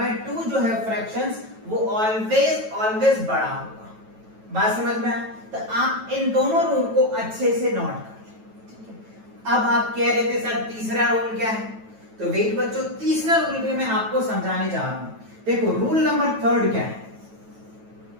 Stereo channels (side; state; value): left; late; 9.2 ms